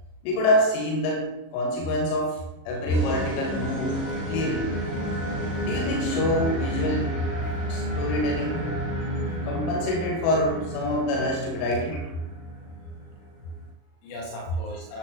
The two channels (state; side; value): late; right; 37 ms